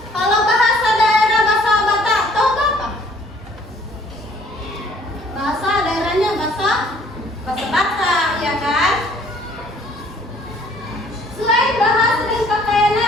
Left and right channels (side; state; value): both; normal; correlation 0.59